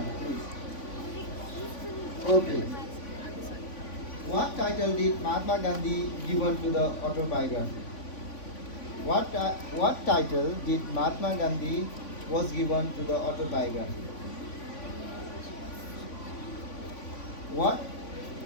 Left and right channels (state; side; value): late; right; 3.5 ms